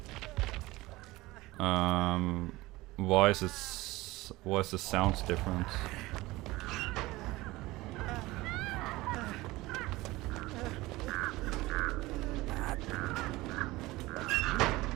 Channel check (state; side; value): quieter; left; 19.7 dB